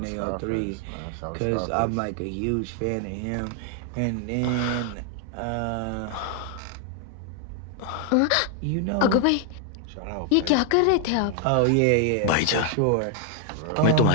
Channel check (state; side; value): different; both; correlation 0.00